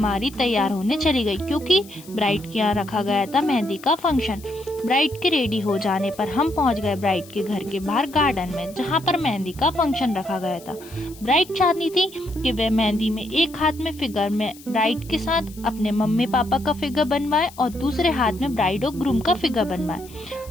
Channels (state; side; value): noise; left; hiss, 21 dB below the sound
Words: तैयार होने चली गई, क्योंकि ब्राइड के यहाँ रखा गया था मेहंदी का फंक्शन। ब्राइड के रेडी हो जाने पर हम पहुंच गए ब्राइड के घर के बाहर गार्डन में, जहाँ पर मेहंदी का फंक्शन रखा गया था। ब्राइड चाहती थी कि वह मेहंदी में एक हाथ में फिगर में ब्राइड के साथ अपने मम्मी पापा का फिगर बनवाए और दूसरे हाथ में ब्राइड और ग्रूम का फिगर बनवाए।